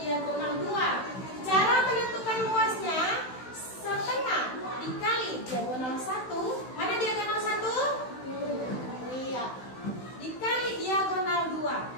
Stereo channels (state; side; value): late; right; 16 ms